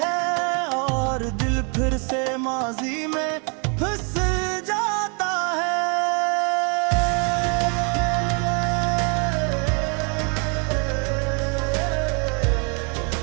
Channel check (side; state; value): left; quieter; 35.7 dB